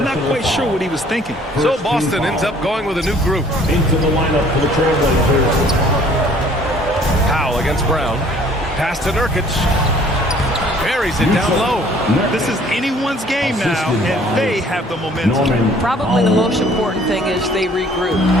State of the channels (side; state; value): both; normal; correlation 0.56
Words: not quite sure what he was thinking. So Boston ends up going with a new group. Into the lineup for the Trailblazers. Powell against Brown. Pass to Nurkic. Buries it down low. This is anyone's game now, and they have the momentum. Probably the most important thing is they regroup.